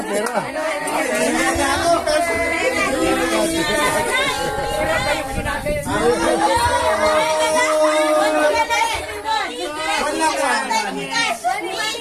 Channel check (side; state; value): both; identical; correlation 1.00